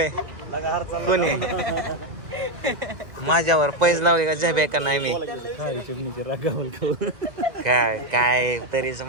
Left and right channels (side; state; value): left; late; 2.0 ms